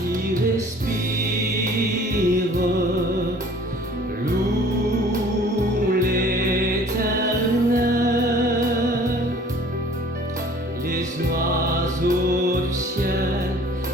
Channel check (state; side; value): normal; both; correlation 0.51